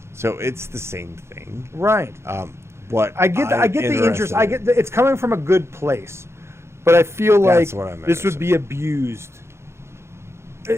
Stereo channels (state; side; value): late; left; 0.13 ms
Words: So it's the same thing. Right. But I get the interest. It's coming from a good place, but I feel like this would be abused.